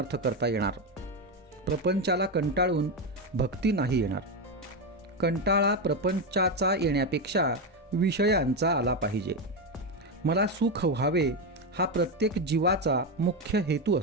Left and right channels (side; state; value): both; normal; correlation 0.11